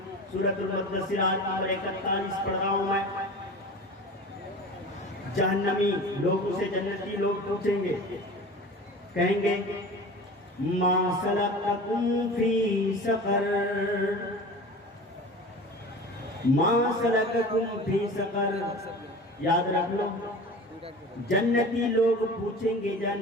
سورۃ المدثر آیت نمبر 41 پڑھ رہا ہوں میں۔ جہنمی لوگوں سے جنتی لوگ پوچھیں گے، کہیں گے ما سلککم فی سقر، ما سلککم فی سقر۔ یاد رکھ لو، جنتی لوگ پوچھیں گے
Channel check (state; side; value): normal; both; correlation 0.36